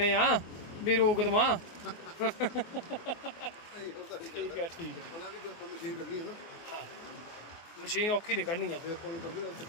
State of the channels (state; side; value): late; right; 24 ms